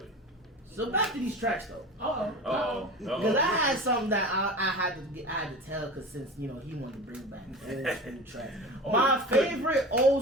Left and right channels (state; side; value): normal; both; correlation 0.33